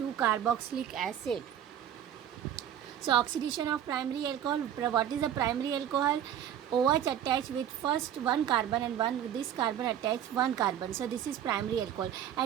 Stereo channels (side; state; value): left; quieter; 10.0 dB